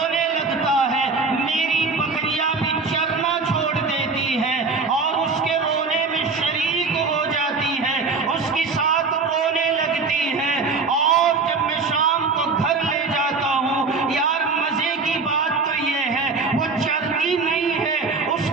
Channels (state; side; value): quieter; left; 4.3 dB